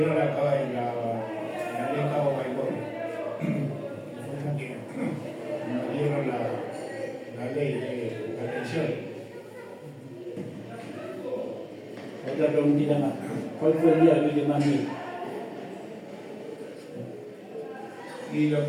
la ley Cabo Baigorria. Fue la que nos dieron la ley de la pensión. Otra preguntita más. ¿Cuál fue el día que más miedo? Y lo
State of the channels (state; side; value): identical; both; correlation 1.00